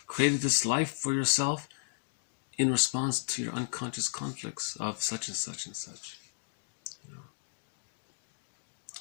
created this life for yourself in response to your unconscious conflicts of such and such and such.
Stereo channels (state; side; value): silent; right; digital silence